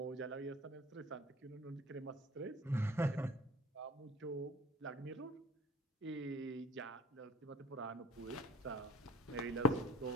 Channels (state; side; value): normal; both; correlation 0.46